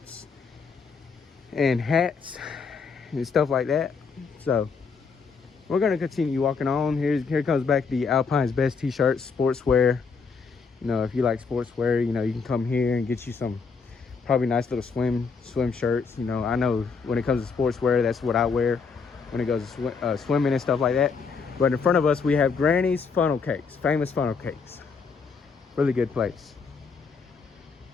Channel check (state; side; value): quieter; right; 5.2 dB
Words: and hats and stuff like that. So we're gonna continue walking on. Here comes back the Alpine's best t-shirts, sportswear. You know, if you like sportswear, you know, you can come here and get you some probably nice little swim shirts. You know, I know when it comes to sportswear, that's what I wear when it goes to swimming and stuff like that. But in front of us, we have Granny's funnel cakes, famous funnel cakes. Really good place.